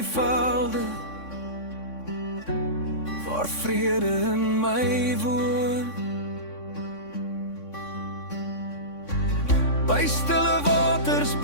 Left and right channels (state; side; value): late; right; 3.6 ms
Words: waar vrede in my woon. By stille waters